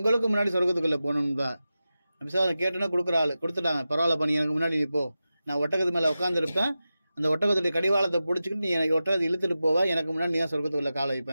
முன்னாடி சொர்க்கத்துக்குள்ளே போகணும்பா. நபி ஸல்லல்லாஹு அலைஹி வஸல்லம் கேட்டோன்னா கொடுக்குற ஆள் கொடுத்துட்டாங்க. பரவாயில்ல பண்ணி எனக்கு முன்னாடி நீ போ, நான் ஒட்டகத்து மேலே உட்காந்துருப்பேன், அந்த ஒட்டகத்துடைய கடிவாளத்தை பிடிச்சிக்கிட்டு நீ எனக்கு ஒட்டகத்தை இழுத்துட்டு போவா, எனக்கு முன்னாடி நீ தான் சொர்க்கத்துக்குள்ளே காலை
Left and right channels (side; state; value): both; inverted; correlation -0.93